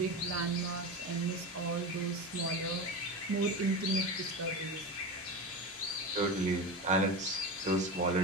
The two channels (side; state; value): both; normal; correlation 0.23